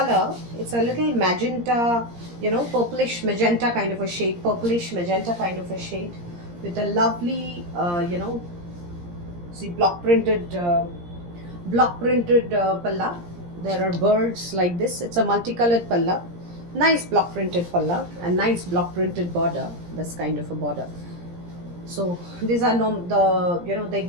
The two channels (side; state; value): left; late; 17 ms